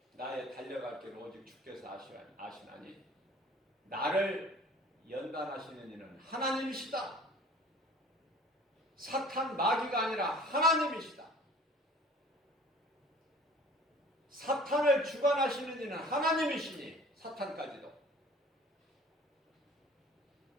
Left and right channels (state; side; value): normal; both; correlation 0.47